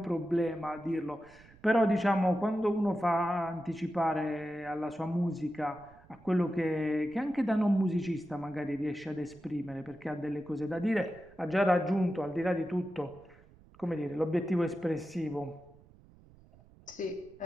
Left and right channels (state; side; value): noise; right; rumble, 25 dB below the sound